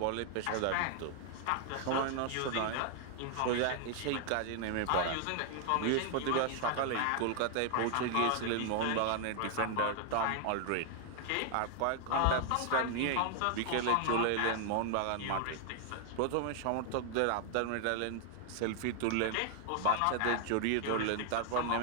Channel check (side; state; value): both; different; correlation 0.00